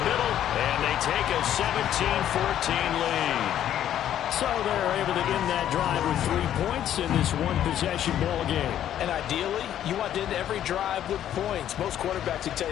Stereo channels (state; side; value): quieter; right; 11.0 dB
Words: middle, and they take a 17-14 lead. So they're able to end that drive with 3 points in this one-possession ball game. And ideally, you want to end every drive with points. Most quarterbacks would tell